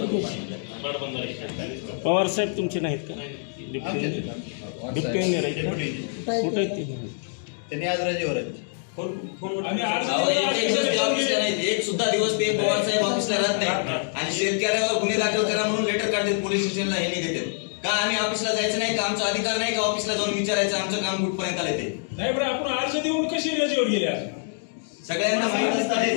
पवार साहेब तुमचे नाहीत का? डिप्टी कुठे त्यांनी आज रजेवर आहेत। एक सुद्धा दिवस ते पवार साहेब ऑफिसला राहत नाही आणि शेतकऱ्यावर गुन्हे दाखल करा म्हणून लेटर काढतात पोलीस स्टेशनला, हे नाही देतात का? आम्ही ऑफिसला जायचं नाही का? आमचा अधिकार नाही का ऑफिसला जाऊन विचारायचं आमचं काम कुठपर्यंत आले ते? नाही बरं, आपण अर्ज देऊन कशी रजेवर गेले? सगळ्यांना माहित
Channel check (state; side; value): silent; right; digital silence